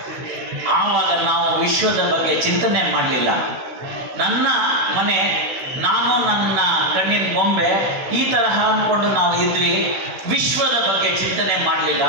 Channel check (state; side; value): late; left; 16 ms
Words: ಆವಾಗ ನಾವು ವಿಶ್ವದ ಬಗ್ಗೆ ಚಿಂತನೆ ಮಾಡಲಿಲ್ಲ. ನನ್ನ ಮನೆ, ನಾನು ನನ್ನ ಕಣ್ಣಿನ ಗೊಂಬೆ, ಈ ತರಹ ಅಂದ್ಕೊಂಡು ನಾವು ಇದ್ವಿ. ವಿಶ್ವದ ಬಗ್ಗೆ ಚಿಂತನೆ ಮಾಡಲಿಲ್ಲ.